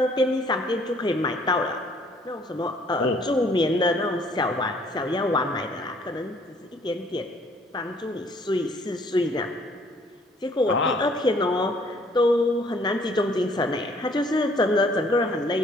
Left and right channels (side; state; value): both; normal; correlation 0.61